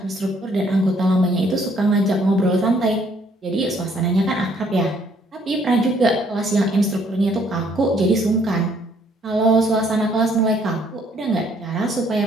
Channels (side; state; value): both; normal; correlation 0.65